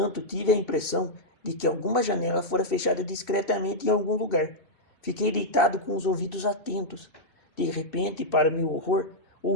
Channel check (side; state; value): right; late; 2.7 ms